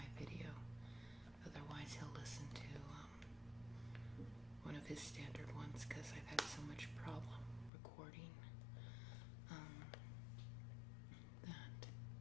video, otherwise he'll listen to one of his standard ones, because I've had so much problem recording that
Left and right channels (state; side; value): drops out; right; at 7.7 s